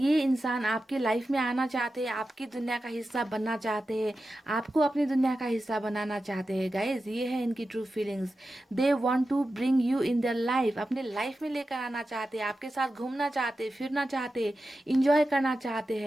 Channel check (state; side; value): normal; both; correlation 0.92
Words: इंसान आपके लाइफ में आना चाहते हैं, आपकी दुनिया का हिस्सा बनना चाहते हैं, आपको अपनी दुनिया का हिस्सा बनाना चाहते हैं गाइज। ये है इनकी true feelings. They want to bring you in their life, अपने लाइफ में लेकर आना चाहते हैं, आपके साथ घूमना चाहते हैं, फिरना चाहते हैं, इंजॉय करना चाहते